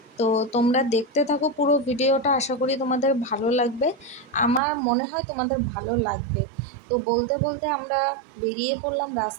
তো তোমরা দেখতে থাকো পুরো ভিডিওটা, আশা করি তোমাদের ভালো লাগবে। আমার মনে হয় তোমাদের ভালো লাগবে। তো বলতে বলতে আমরা বেরিয়ে পড়লাম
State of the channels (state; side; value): drops out; left; at 4.6 s